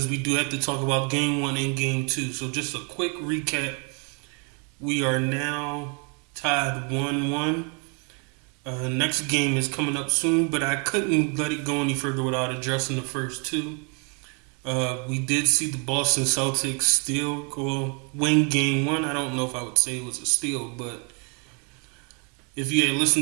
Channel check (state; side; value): quieter; left; 35.9 dB